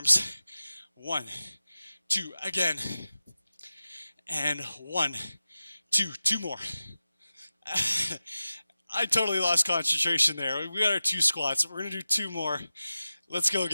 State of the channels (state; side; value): inverted; both; correlation -0.94